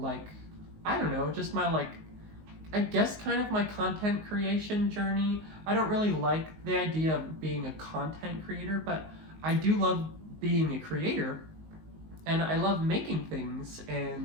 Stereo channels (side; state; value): left; late; 19 ms